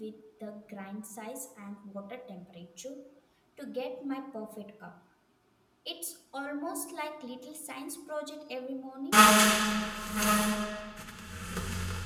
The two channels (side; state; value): both; identical; correlation 1.00